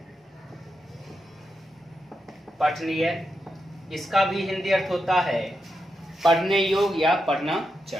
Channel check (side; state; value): both; normal; correlation 0.86